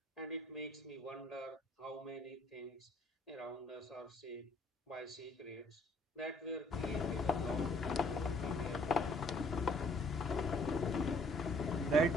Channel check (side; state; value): both; normal; correlation 0.61